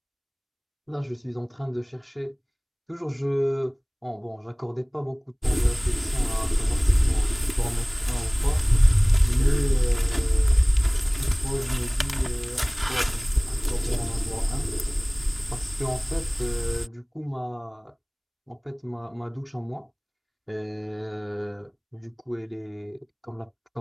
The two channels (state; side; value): identical; both; correlation 1.00